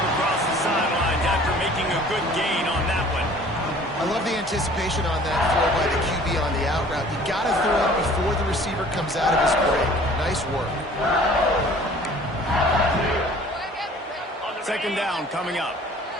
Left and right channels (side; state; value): both; normal; correlation 0.50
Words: the sidelines after making a good gain on that one. I love the anticipation on that throw by the QB on the out route. You got to throw it before the receiver comes out of his break. Nice work. Second down coming up.